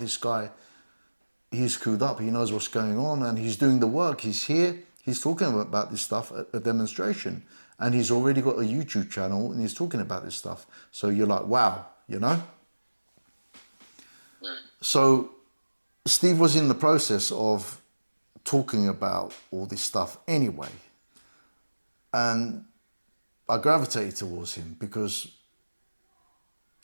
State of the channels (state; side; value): inverted; both; correlation -1.00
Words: guy, he's clued up, he knows what's going on, and he's doing the work. He's here, he's talking about this stuff at a demonstration, and he's already got a YouTube channel, and he's talking about this stuff. So you're like, wow, you know? So Steve was in the process of talking about all this stuff anyway. And I gravitated towards him because